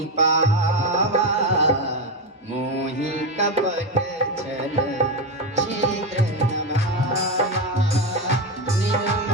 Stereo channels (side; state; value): both; normal; correlation 0.12